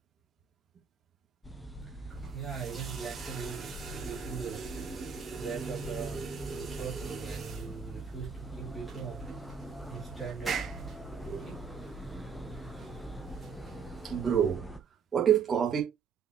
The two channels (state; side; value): quieter; left; 6.4 dB